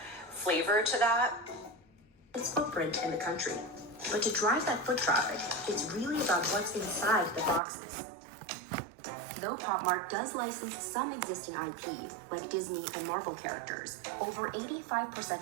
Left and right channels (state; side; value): drops out; left; at 7.6 s